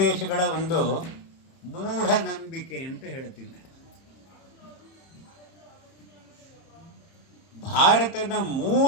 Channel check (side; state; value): right; late; 30 ms